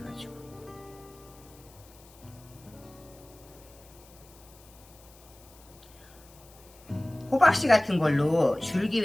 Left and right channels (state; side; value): noise; left; hiss, 24 dB below the sound